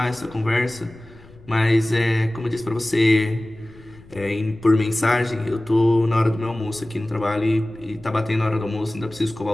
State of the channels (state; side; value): noise; left; rumble, 23 dB below the sound